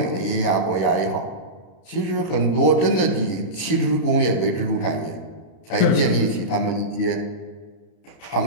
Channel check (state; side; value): late; right; 32 ms